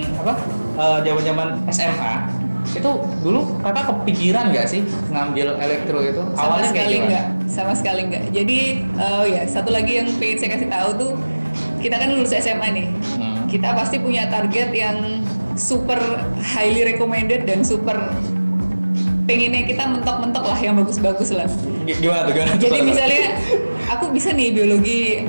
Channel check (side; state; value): both; inverted; correlation -1.00